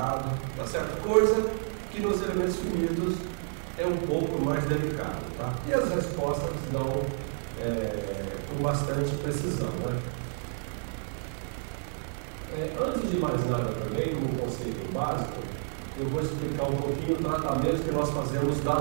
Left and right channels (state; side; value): silent; left; 58 dB below the other